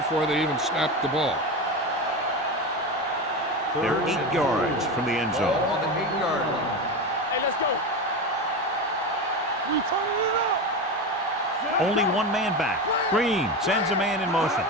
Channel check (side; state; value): both; normal; correlation 0.21